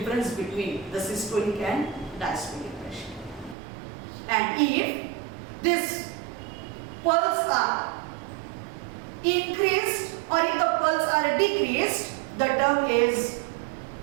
between the systolic and diastolic pressure. And if this pulse are increased or if the pulse are decreased, the term is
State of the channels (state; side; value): drops out; left; at 3.6 s